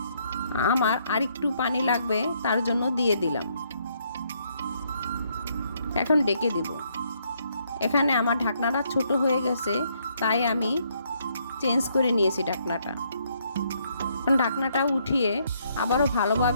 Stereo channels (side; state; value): both; inverted; correlation -0.71